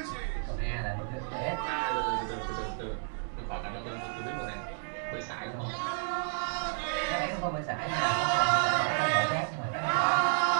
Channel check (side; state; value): left; silent; 57 dB below the other